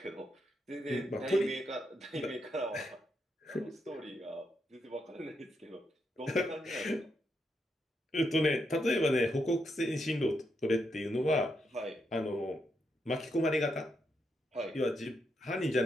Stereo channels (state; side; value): normal; both; correlation 0.81